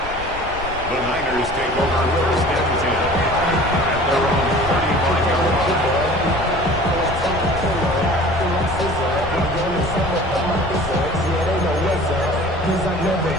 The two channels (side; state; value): left; noise; rumble, 12 dB below the sound